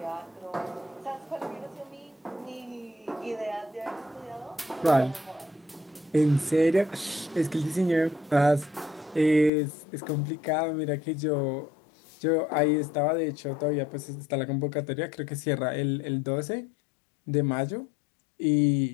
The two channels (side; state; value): right; drops out; at 9.5 s